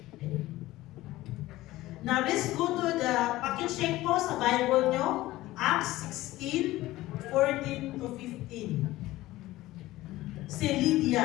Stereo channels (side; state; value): right; quieter; 17.1 dB